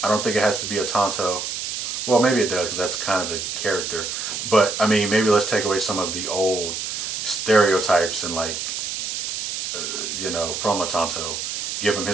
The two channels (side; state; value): right; noise; hiss, 4 dB below the sound